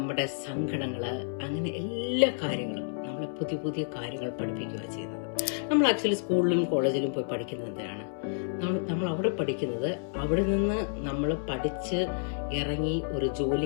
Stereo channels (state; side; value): silent; right; 58 dB below the other